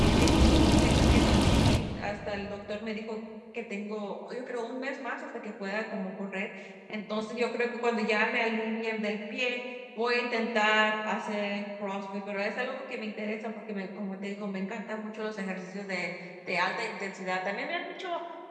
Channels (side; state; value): both; identical; correlation 1.00